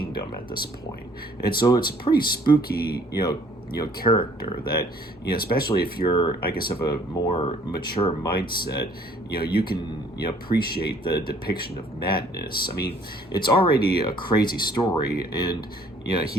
at this point. And so it's a pretty spooky, you know, character that, you know, especially if you're, I guess, of a more mature mindset, you know, you can, you know, appreciate the depiction of madness. I mean, it's already a crazy story, and, you know,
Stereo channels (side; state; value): both; normal; correlation 0.58